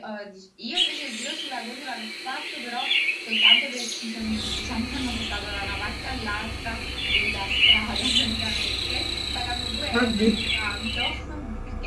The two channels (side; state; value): both; identical; correlation 1.00